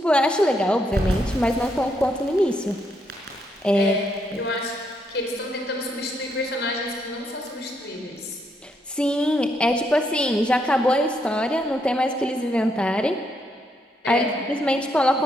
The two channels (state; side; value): normal; both; correlation 0.77